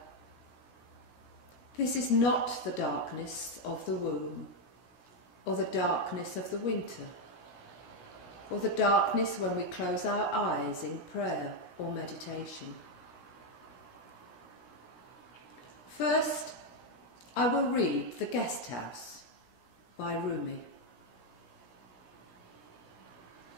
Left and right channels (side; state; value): right; late; 16 ms